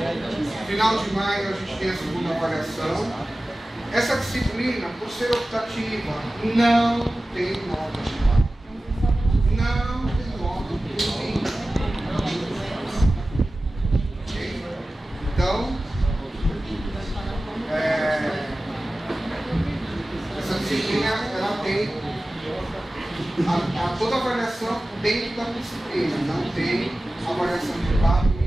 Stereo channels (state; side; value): normal; both; correlation 0.96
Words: Final de maio a gente tem a segunda avaliação. Essa disciplina, por ser optativa, não tem nota. Não tem nota. Então, essa disciplina ela tem toda a avaliação dentro da disciplina, não tem avaliação de papo